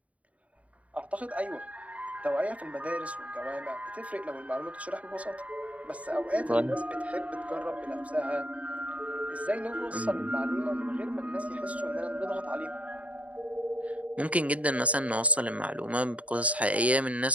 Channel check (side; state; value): left; late; 0.067 ms